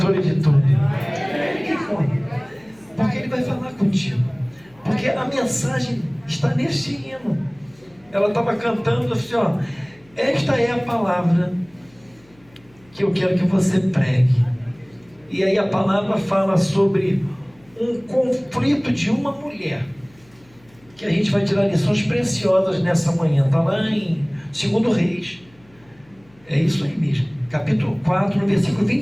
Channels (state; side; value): noise; left; hum, 30 dB below the sound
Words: de tudo? Porque ele vai falar contigo. Porque a mensagem está neste hino. Ela estava cantando assim, ó: esta é a palavra que eu quero que você pregue. E aí a palavra fala sobre um conflito de uma mulher, que a gente vai tirar lições preciosas nessa manhã. Está lá em 2 Reis. É isso aí mesmo. Capítulo 4, no versículo